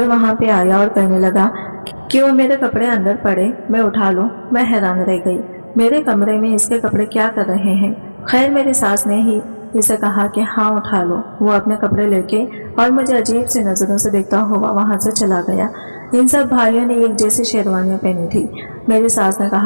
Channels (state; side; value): inverted; both; correlation -1.00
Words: वहां पे आया और कहने लगा कि वो मेरे कपड़े अंदर पड़े, मैं उठा लूं, मैं हैरान रह गई। मेरे कमरे में इसके कपड़े क्या कर रहे हैं? खैर मेरी सास ने ही इसे कहा कि हाँ उठा लो। वो अपने कपड़े लेके और मुझे अजीब सी नजरों से देखता हुआ वहां से चला गया। इन सब भाइयों ने एक जैसी शेरवानियां पहनी थी। मेरी सास ने